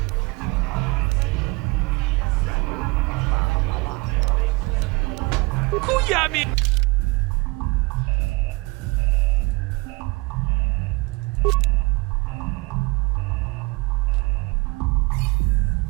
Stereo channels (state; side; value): quieter; left; 25.5 dB